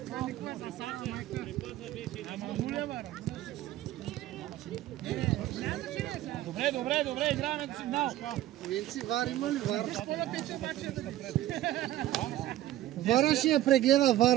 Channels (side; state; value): left; quieter; 14.2 dB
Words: Добре, играем на сигнал. Винци, Вар има ли Вар? Вара ще я прегледа,